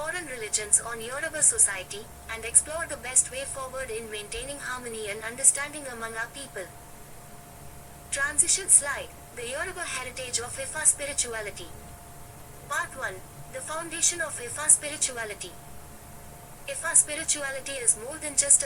religions on Yoruba society, and explore the best way forward in maintaining harmony and understanding among our people. Transition slide, the Yoruba heritage of Ifa spirituality. Part 1, the foundation of Ifa spirituality. Ifa spirituality is more than just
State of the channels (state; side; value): identical; both; correlation 1.00